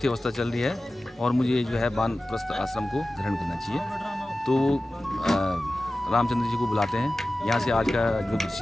अवस्था चल रही है और मुझे जो है वानप्रस्थ आश्रम को ग्रहण करना चाहिए। तो रामचंद्र जी को बुलाते हैं, यहाँ से आज का जो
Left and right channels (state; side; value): normal; both; correlation 0.96